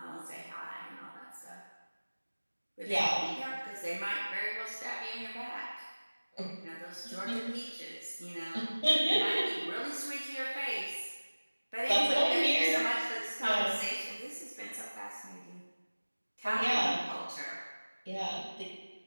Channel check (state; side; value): inverted; both; correlation -1.00